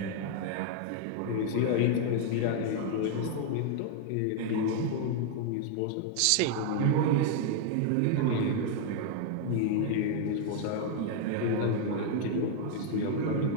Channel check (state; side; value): different; both; correlation 0.00